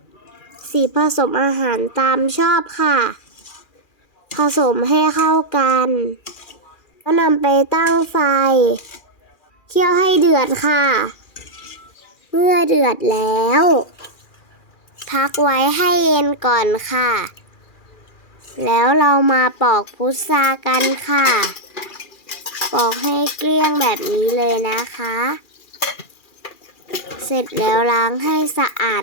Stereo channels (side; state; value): right; late; 2.4 ms